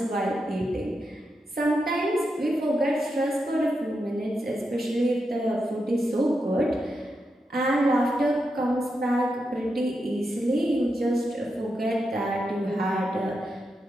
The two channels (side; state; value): both; normal; correlation 0.86